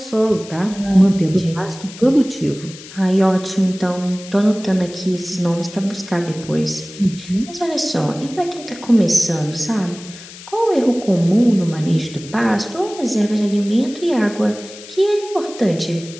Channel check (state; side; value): noise; left; hiss, 17 dB below the sound